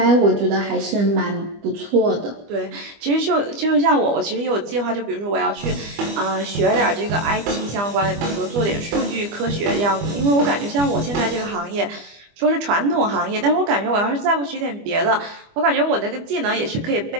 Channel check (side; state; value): left; late; 25 ms